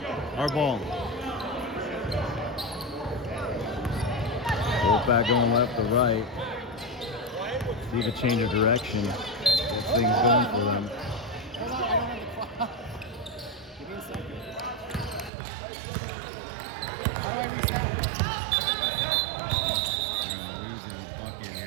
Our ball. Wolfpack going left to right. See if a change of direction. This thing's going for them. Hold on, I don't have the clock. Give me a second. How do I reset? We're going to lose a bucket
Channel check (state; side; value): drops out; left; at 15.3 s